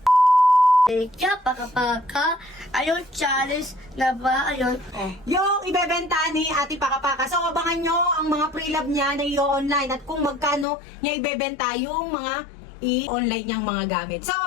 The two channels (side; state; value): right; drops out; at 10.7 s